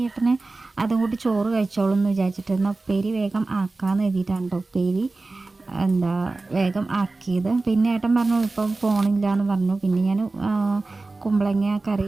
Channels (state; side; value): quieter; left; 3.4 dB